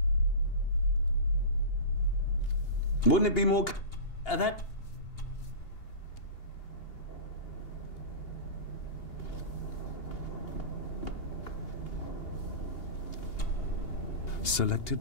Wouldn't it be more... That... Selected?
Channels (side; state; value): right; late; 2.8 ms